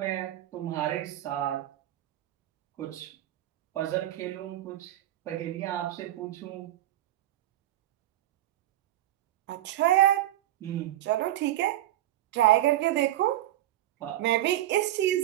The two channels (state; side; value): quieter; left; 14.0 dB